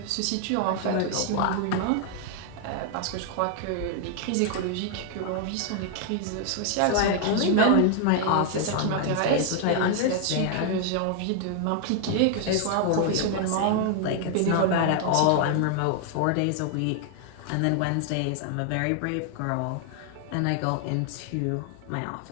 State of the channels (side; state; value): both; different; correlation 0.00